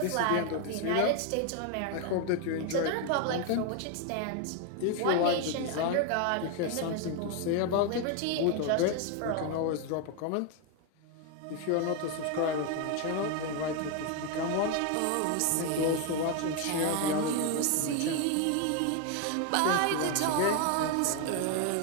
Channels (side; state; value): both; different; correlation 0.01